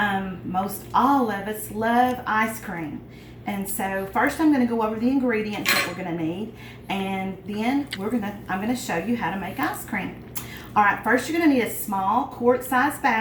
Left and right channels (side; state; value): both; identical; correlation 1.00